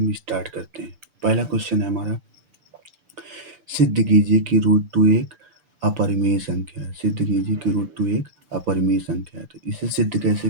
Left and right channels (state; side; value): late; left; 6.8 ms